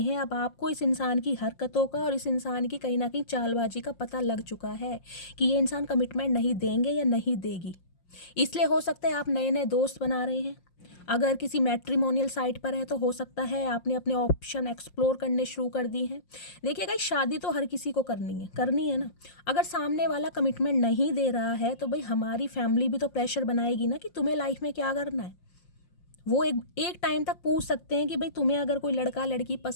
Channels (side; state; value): right; late; 5.6 ms